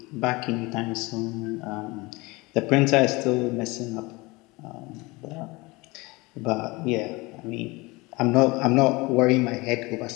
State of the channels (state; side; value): quieter; right; 23.7 dB